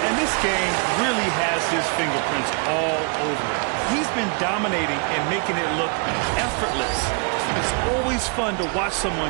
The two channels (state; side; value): quieter; left; 38.9 dB